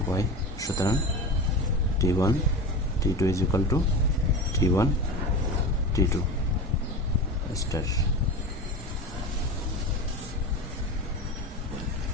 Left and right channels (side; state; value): both; normal; correlation 0.27